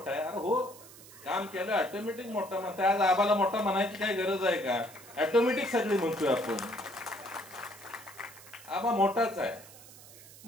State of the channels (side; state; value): right; noise; hiss, 19 dB below the sound